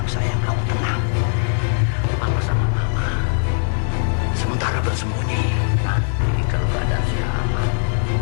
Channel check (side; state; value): right; silent; digital silence